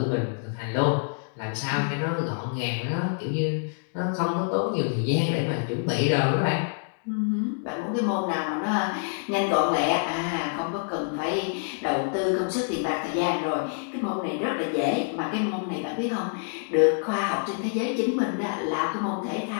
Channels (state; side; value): silent; right; digital silence